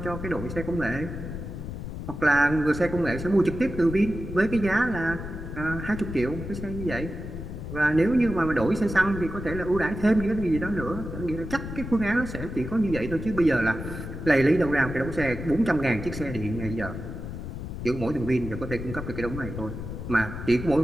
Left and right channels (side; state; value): left; noise; rumble, 8 dB below the sound